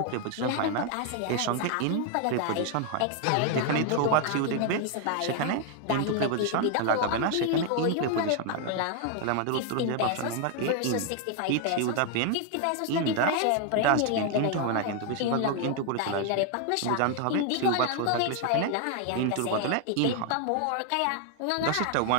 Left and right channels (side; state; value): both; different; correlation 0.00